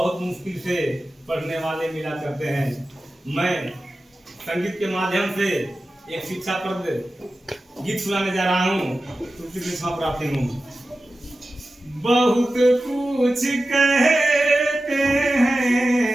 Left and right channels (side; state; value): both; normal; correlation 0.94